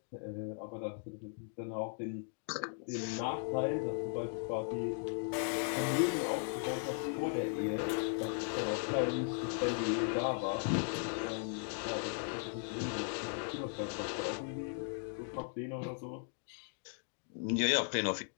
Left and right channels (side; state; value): right; silent; 53 dB below the other